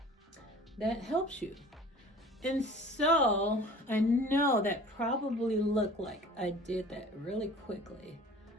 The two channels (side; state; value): both; normal; correlation 0.45